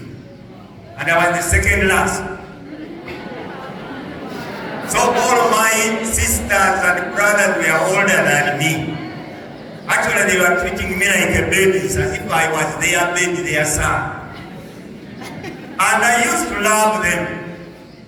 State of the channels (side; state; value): both; identical; correlation 1.00